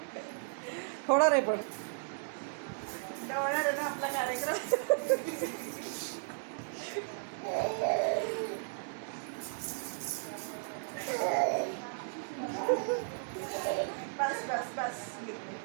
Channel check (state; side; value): silent; left; 54 dB below the other